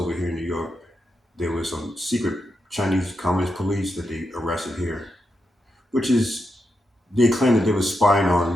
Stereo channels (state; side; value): normal; both; correlation 0.85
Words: here in New York. There was some secret Chinese Communist police that they arrested here, which is they claimed that they were spying